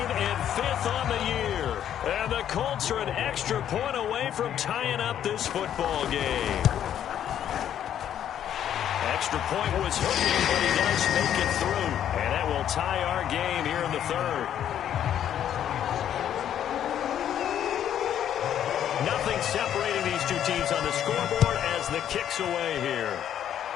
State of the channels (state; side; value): quieter; right; 10.2 dB